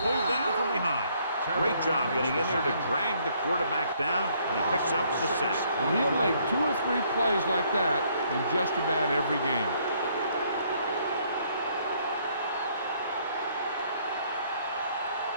down from behind. Great job getting in there to drag the quarterback down, and he picks up the sack. And he'll make 2 or 3 plays like that in just about every game.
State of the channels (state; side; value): inverted; both; correlation -0.66